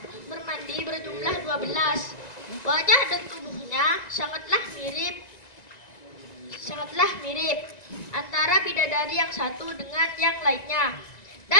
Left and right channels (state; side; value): late; right; 1.9 ms